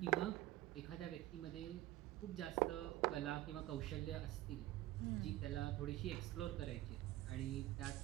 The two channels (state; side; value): quieter; left; 15.6 dB